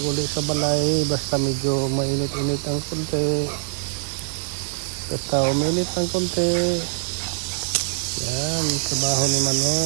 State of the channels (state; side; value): silent; left; digital silence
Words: uli sa balay, basta medyo mainit-init ang konti. Basta uminit ang konti. Yan, trabaho ni